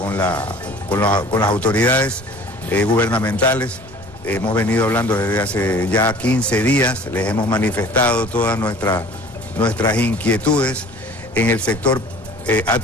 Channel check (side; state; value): both; normal; correlation 0.47